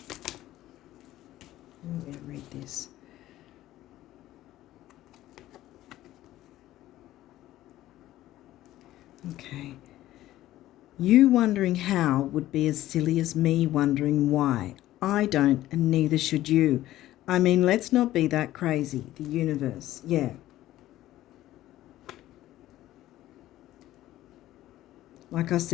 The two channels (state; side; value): quieter; right; 14.7 dB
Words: I'm going to read this. Okay. You wondering how would be as silly as me wondering why. I don't, and neither should you. I mean, let's not be that crazy. The universe, yeah. Like I